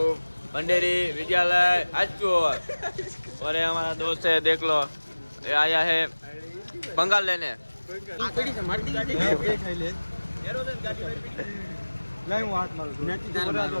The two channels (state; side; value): inverted; both; correlation -1.00